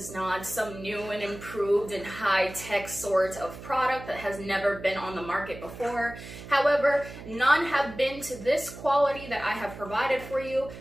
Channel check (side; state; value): right; noise; hum, 13 dB below the sound